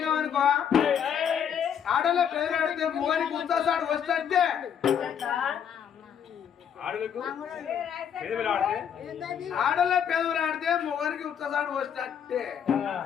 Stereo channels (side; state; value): right; quieter; 8.3 dB